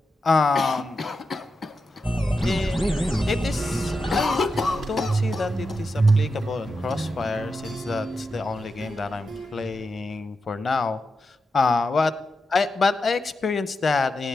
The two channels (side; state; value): both; normal; correlation 0.88